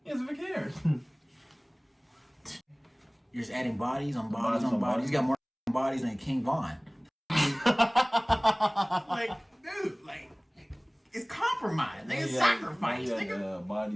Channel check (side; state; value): both; identical; correlation 1.00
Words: doesn't even care. You're just adding bodies on bodies on bodies. You got more bodies than King Von. Dude, it's compromise. It's sacrifice. Nigga, body